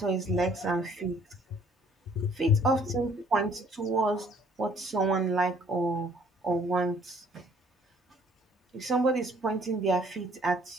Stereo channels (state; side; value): normal; both; correlation 0.59